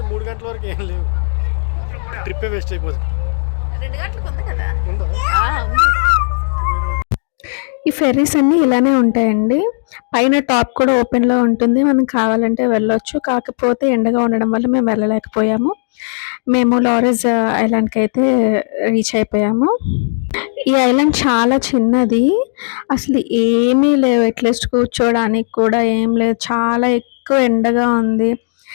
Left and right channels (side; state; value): right; silent; digital silence